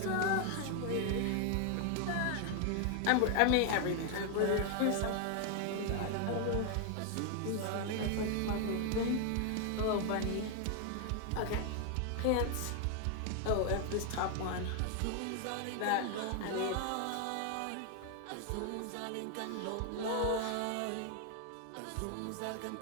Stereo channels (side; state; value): both; different; correlation 0.00